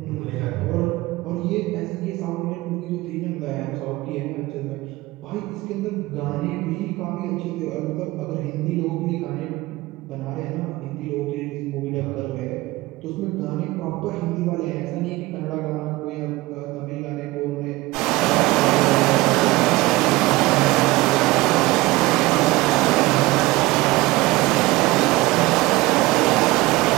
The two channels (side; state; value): left; quieter; 19.8 dB